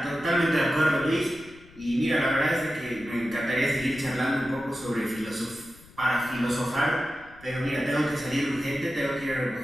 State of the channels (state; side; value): noise; left; rumble, 23 dB below the sound